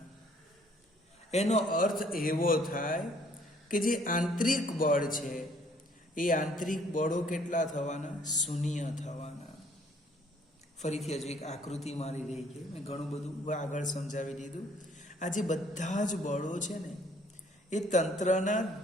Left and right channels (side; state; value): both; normal; correlation 0.62